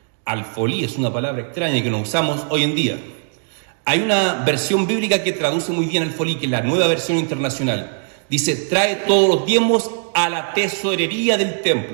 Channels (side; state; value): left; silent; 66 dB below the other